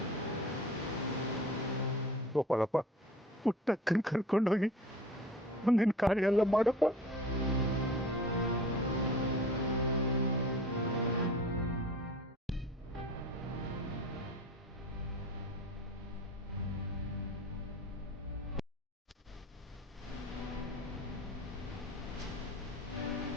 ಗೋಪಾಲಪ್ಪ, ಪುಟ್ಟಕ್ಕನ ಕರ್ಕೊಂಡೋಗಿ ಮುಂದಿನ ಕಾರ್ಯ ಎಲ್ಲ ಮಾಡಪ್ಪ.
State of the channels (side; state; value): both; normal; correlation 0.41